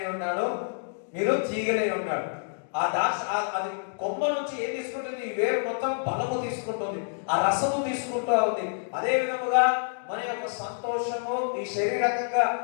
ఉన్నాడు, మీరు తీగలై ఉన్నాడు. ఆ ద్రాక్ష అది కొమ్మ నుంచి ఏం తీసుకుంటుంది? ఈ వేరు మొత్తం బలము తీసుకుంటుంది, ఆ రసము తీసుకుంటూ ఉంది. అదే విధముగా మన యొక్క సంతోషము ఈ శరీరకంగా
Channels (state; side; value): silent; right; digital silence